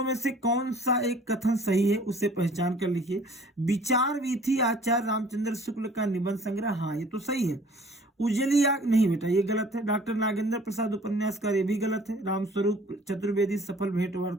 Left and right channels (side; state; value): both; normal; correlation 0.52